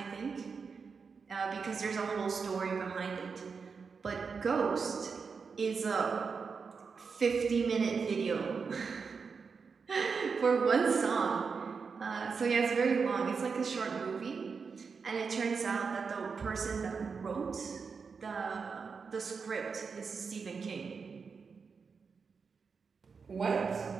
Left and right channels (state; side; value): quieter; left; 5.4 dB